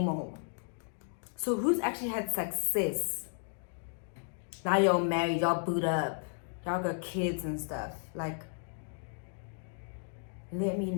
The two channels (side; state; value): right; silent; 55 dB below the other